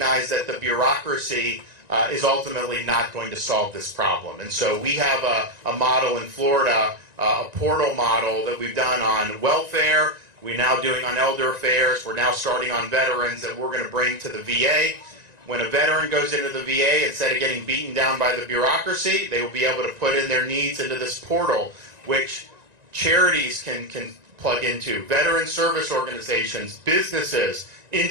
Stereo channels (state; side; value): late; left; 1.9 ms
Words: that the bureaucracy is ultimately not going to solve this problem. And so we have a model in Florida, a portal model that we've done on welfare. We're now doing on elder affairs. We're now starting on veterans that we're going to bring to the VA. When a veteran goes into the VA, instead of getting beaten down by the bureaucracy, they will be able to put in their needs into this portal, which charities can plug into, veteran service organizations, businesses,